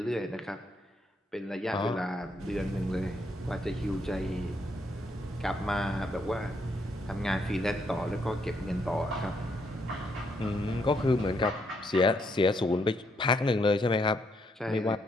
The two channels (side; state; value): both; normal; correlation 0.75